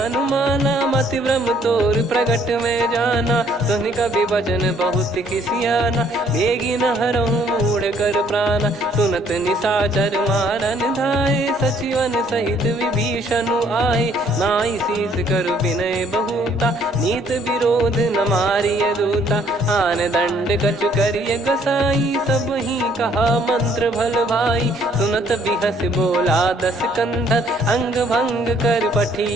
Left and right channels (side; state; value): both; normal; correlation 0.63